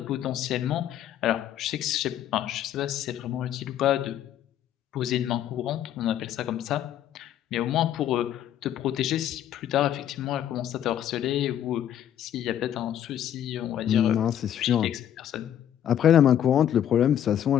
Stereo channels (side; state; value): right; quieter; 10.6 dB